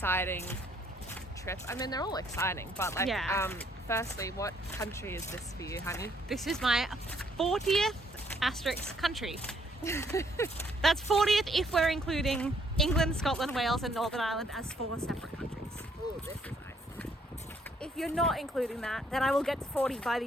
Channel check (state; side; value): normal; both; correlation 0.67